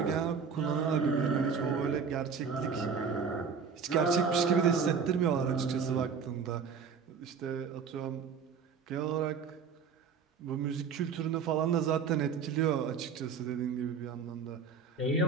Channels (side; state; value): left; quieter; 6.0 dB